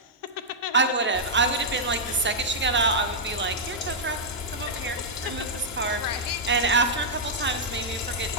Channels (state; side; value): normal; both; correlation -0.07